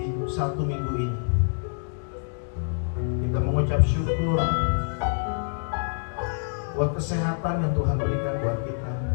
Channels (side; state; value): right; silent; digital silence